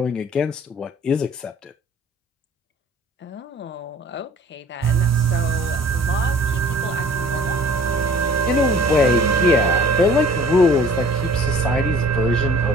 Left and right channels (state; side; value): normal; both; correlation 0.50